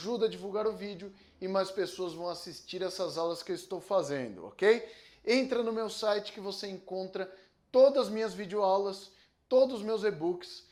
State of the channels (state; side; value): identical; both; correlation 1.00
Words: a divulgar o vídeo e mais pessoas vão assistir essas aulas que eu estou fazendo, ok? Entra no meu site que você encontra todas as minhas videoaulas, todos os meus e-books,